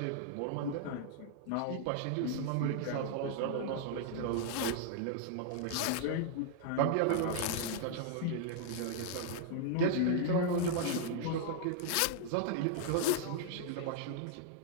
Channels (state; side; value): different; both; correlation -0.01